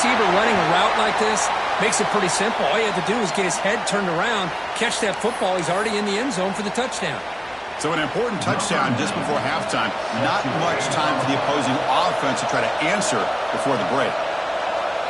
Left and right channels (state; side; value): identical; both; correlation 1.00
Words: running a route like this, makes it pretty simple. All you have to do is get his head turned around, catch that football. He's already in the end zone for the touchdown. So an important touchdown just before halftime. Not much time for the opposing offense to try to answer before the break.